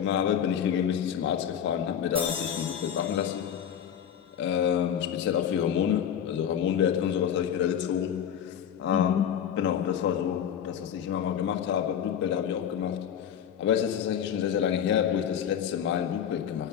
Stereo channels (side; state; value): right; quieter; 9.0 dB